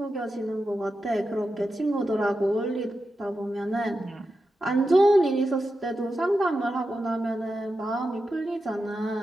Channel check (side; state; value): both; normal; correlation 0.90